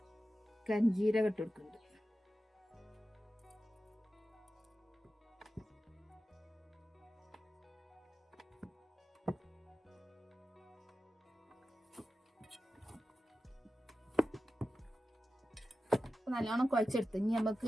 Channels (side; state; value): both; normal; correlation 0.93